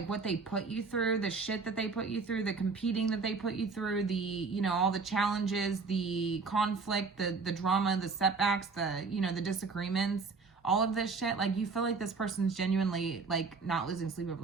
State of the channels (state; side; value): quieter; left; 4.5 dB